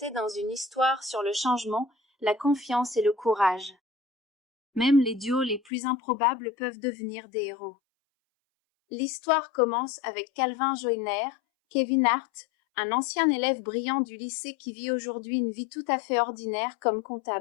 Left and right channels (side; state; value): right; drops out; at 5.7 s